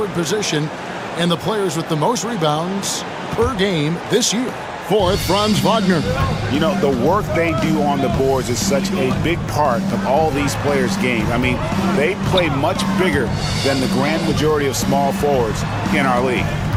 position and the players with the most rebounds per game this year. Fourth, Franz Wagner. You know, the work they do on the boards is such a big part of all these players' games. I mean, they play much bigger than the grand majority of small forwards in our league.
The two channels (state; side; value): identical; both; correlation 1.00